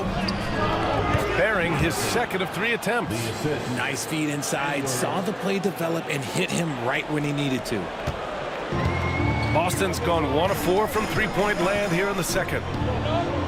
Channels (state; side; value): identical; both; correlation 1.00